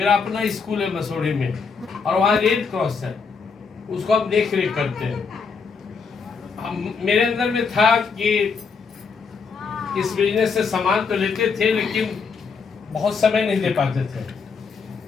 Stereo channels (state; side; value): quieter; right; 5.3 dB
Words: अपना स्कूल है मसूरी में और वहाँ रेड क्रॉस है, उसको हम देख रेख करते हैं। मेरे अंदर में था कि इस बिजनेस से सामान तो लेते थे लेकिन बहुत समय नहीं दे पाते थे।